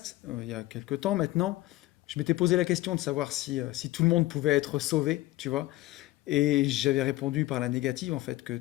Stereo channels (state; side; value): quieter; right; 17.7 dB